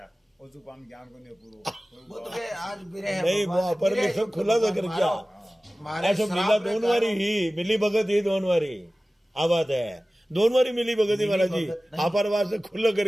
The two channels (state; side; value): normal; both; correlation 0.97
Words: और जो काम ज्ञान को नहीं पूरो वो तो आज बिरह नहीं वो पर भी सब खुला तो कर क्या ऐसा मिला दोनों वारी ही मिली भगत ही दोनों वारी आ बात है। दोनों बारी मिली भगत महाराज जी, भगत नहीं। आप से खुला